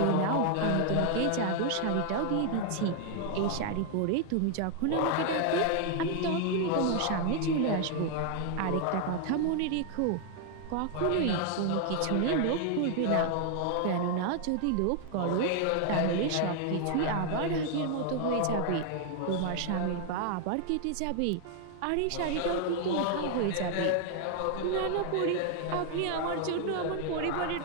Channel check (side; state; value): both; different; correlation 0.00